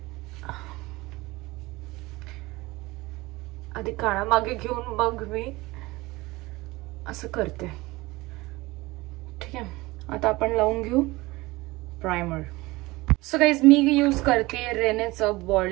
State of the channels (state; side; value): quieter; left; 21.1 dB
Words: आधी काळा मागे घेऊन मग मी असं करते. ठीक आहे, आता आपण लावून घेऊ प्रायमर. सो गाईज, मी यूज करते रेनेचं